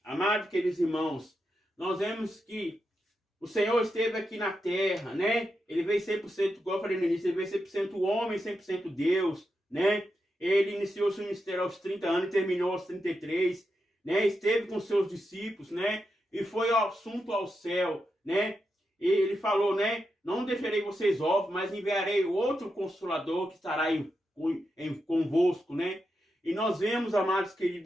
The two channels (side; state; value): both; normal; correlation 0.86